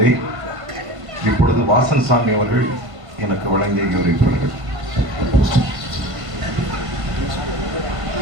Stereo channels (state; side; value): late; left; 1.5 ms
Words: இப்பொழுது வாசன் சாமி அவர்கள் எனக்கு வழங்கி கௌரவிப்பார்கள்.